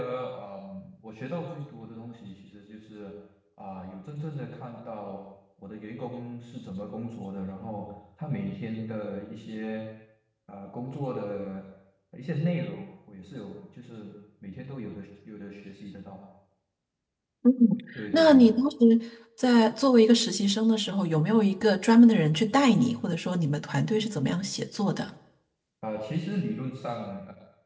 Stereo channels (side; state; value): both; identical; correlation 1.00